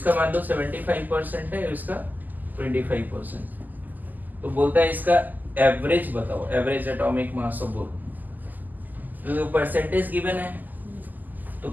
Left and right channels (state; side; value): late; left; 0.084 ms